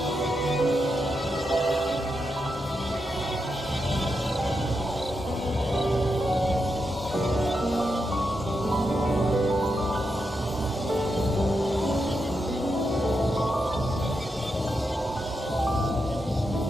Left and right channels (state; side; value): normal; both; correlation 0.85